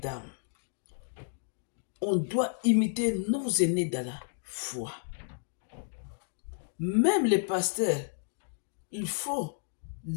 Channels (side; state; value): right; silent; digital silence